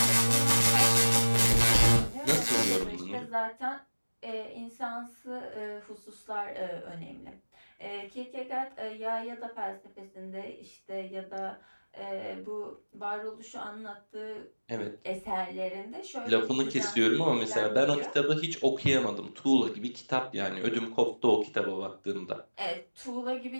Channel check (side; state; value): both; inverted; correlation -1.00